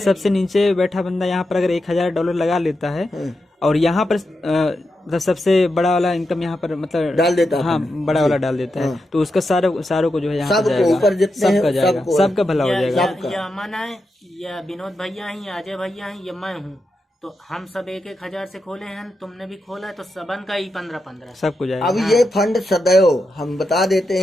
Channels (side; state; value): both; normal; correlation 0.87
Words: नीचे बैठा बंदा यहाँ पर अगर $1,000 लगा लेता है और यहाँ पर मतलब सबसे बड़ा वाला इनकम यहाँ पर मतलब डाल देता है। हाँ, बड़ा वाला डाल देता है, तो उसका सारों को जो है यहाँ पर सबको जाएगा, ऊपर जितने हैं, सबका जाएगा, सबको। सबका भला हो जाएगा। या अमन है या विनोद भैया हैं या अजय भैया हैं या मैं हूँ, तो हम सब 1,000 से खोले हैं। तुमने भी खोला है तो सबन का ही 15-15 सबको जाएगा। अब ये फंड सदैव हम बता देते